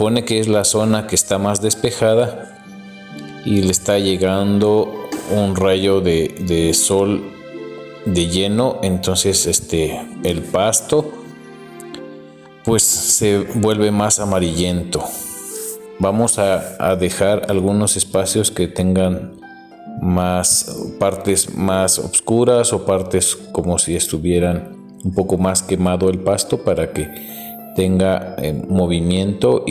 que es la zona que está más despejada y le está llegando un rayo de sol de lleno. Entonces el pasto pues se vuelve más amarillento. Vamos a dejar algunos espacios que tengan más partes más oscuras o partes como si estuvieran un poco más quemado el pasto, para que tenga movimiento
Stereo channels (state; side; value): identical; both; correlation 1.00